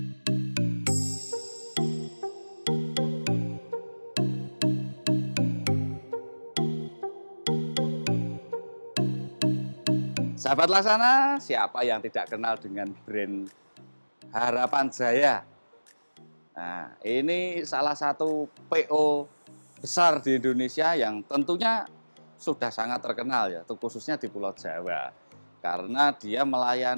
Sahabat Laksana, siapa yang tidak kenal dengan brand Harapan Jaya? Nah, ini salah satu PO besar di Indonesia yang tentunya sudah sangat terkenal ya, khususnya di Pulau Jawa. Karena dia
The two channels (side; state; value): both; inverted; correlation -1.00